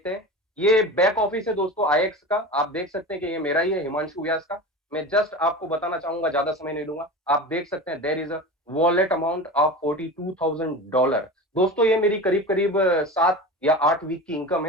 हैं। ये बैक ऑफिस है दोस्तों आईएक्स का, आप देख सकते हैं कि ये मेरा ही है, हिमांशु व्यास का। मैं जस्ट आपको बताना चाहूंगा, ज्यादा समय नहीं लूंगा। आप देख सकते हैं there is a wallet amount of $42,000। दोस्तों ये मेरी करीब करीब 7 या 8 वीक की इनकम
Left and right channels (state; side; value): normal; both; correlation 0.30